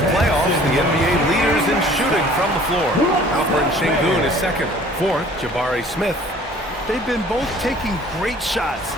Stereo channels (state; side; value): normal; both; correlation 0.52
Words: playoffs, the NBA leaders in shooting from the floor. Alperen Şengün is second. Fourth, Jabari Smith. They've been both taking great shots.